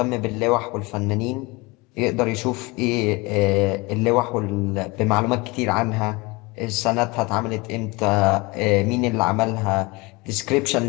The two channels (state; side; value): quieter; right; 25.1 dB